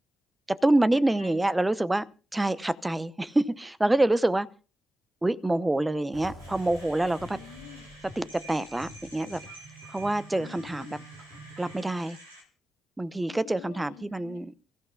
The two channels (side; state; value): both; normal; correlation 0.98